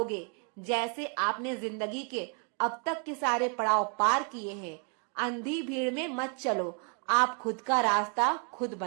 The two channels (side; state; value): left; quieter; 38.9 dB